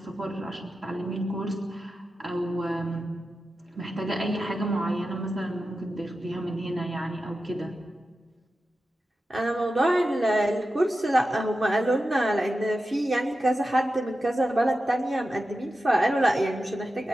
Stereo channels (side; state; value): both; normal; correlation 0.92